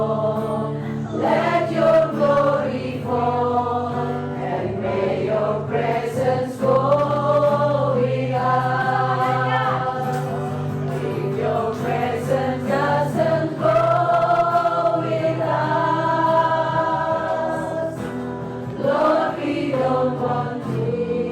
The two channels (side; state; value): both; identical; correlation 1.00